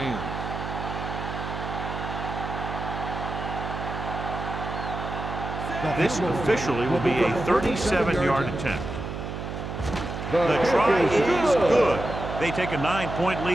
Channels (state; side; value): noise; right; hum, 6 dB below the sound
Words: This officially will be a 37-yard attempt. The try is good. They take a 9-point